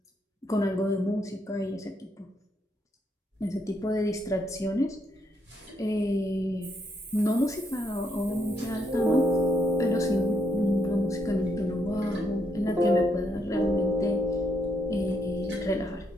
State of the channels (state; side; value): normal; both; correlation 0.75